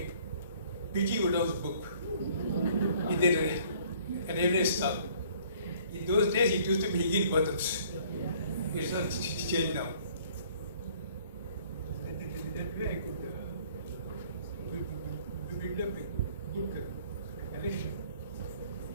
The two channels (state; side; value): inverted; both; correlation -0.57